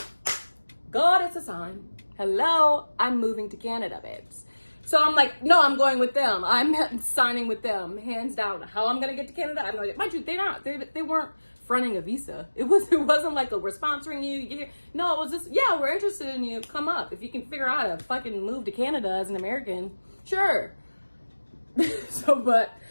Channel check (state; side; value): inverted; both; correlation -1.00